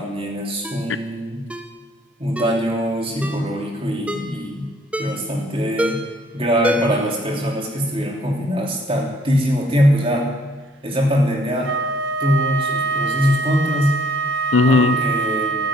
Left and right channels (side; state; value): both; normal; correlation 0.62